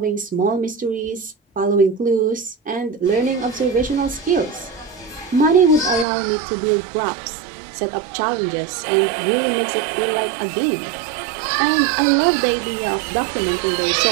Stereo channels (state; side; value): drops out; left; at 6.1 s